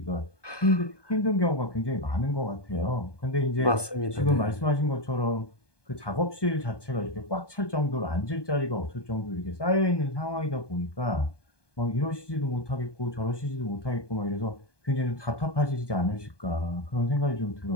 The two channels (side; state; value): right; late; 1.2 ms